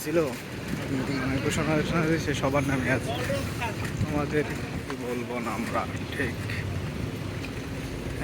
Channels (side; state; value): both; identical; correlation 1.00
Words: ছিল মানে ঘোষণা দিয়েছে, সবার নামে আছে। আমাদের কি বলবো না আমরা, ঠিক